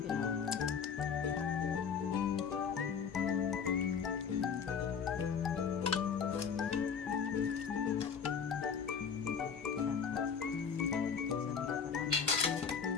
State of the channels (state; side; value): quieter; right; 6.6 dB